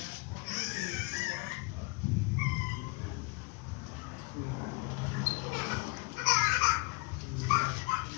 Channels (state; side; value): quieter; right; 28.1 dB